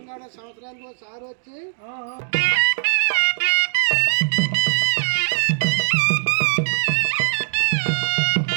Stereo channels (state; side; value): silent; left; digital silence